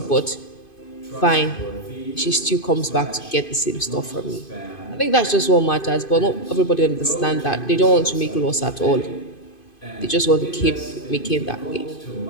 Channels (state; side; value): late; right; 2.5 ms